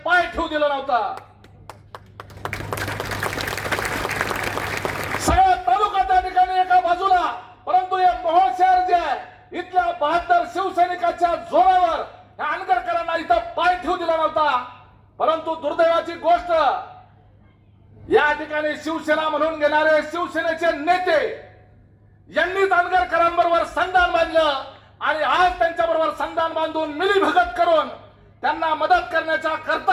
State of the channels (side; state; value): both; identical; correlation 1.00